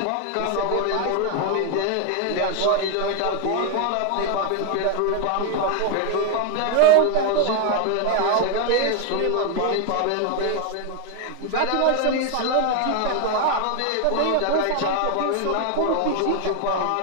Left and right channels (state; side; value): different; both; correlation 0.01